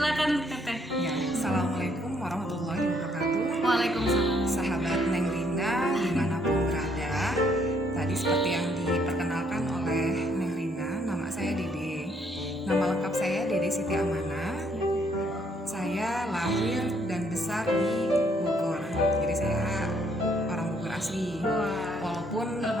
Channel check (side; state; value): both; normal; correlation 0.68